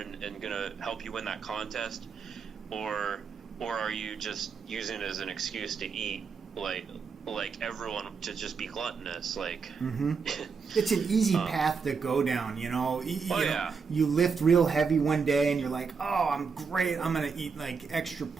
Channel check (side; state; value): left; quieter; 5.5 dB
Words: gonna help you win that contest, or are you just using it as an excuse to eat like everyone, to just be gluttonous? It's an easy path to go down, you lift real heavy one day and you're like, oh, I'm great, I'm gonna eat extra